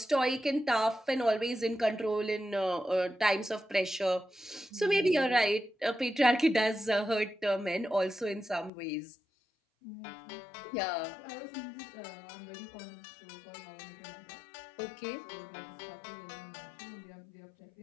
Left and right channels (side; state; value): right; drops out; at 8.7 s